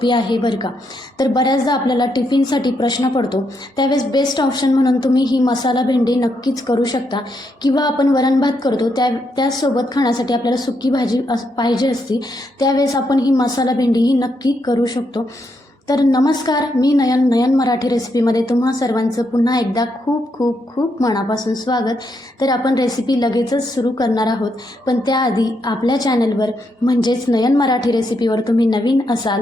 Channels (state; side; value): normal; both; correlation 0.79